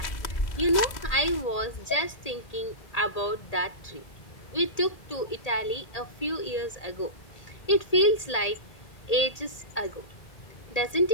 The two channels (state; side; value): late; right; 1.8 ms